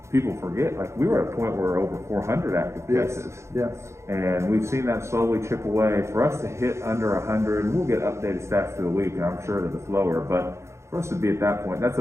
people forget, like we were at a point where we're over 400 active cases. Yes. And we've seen that slowly chip away. For us to hit under 100, we'll get updated stats through the week, and I'm sure that it's lower, but for us to be at that point, that's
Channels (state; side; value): late; left; 0.14 ms